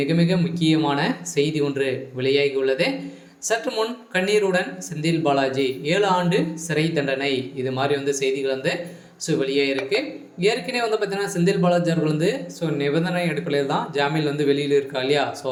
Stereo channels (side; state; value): both; identical; correlation 1.00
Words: மிக முக்கியமான செய்தி ஒன்று வெளியாகியுள்ளது. சற்று முன் கண்ணீருடன் செந்தில் பாலாஜி 7 ஆண்டு சிறை தண்டனை, இது மாதிரி செய்திகள் வெளியாகிருக்கு. ஏற்கனவே பார்த்தீங்கன்னா செந்தில் பாலாஜி அவர்கள் நிபந்தனை அடிப்படையில் தான் ஜாமீன் வெளியில் இருக்கா இல்லையா. ஸோ